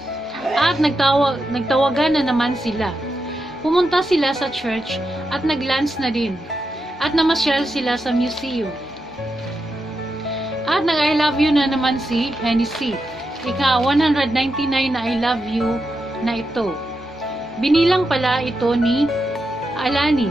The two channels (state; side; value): normal; both; correlation 0.86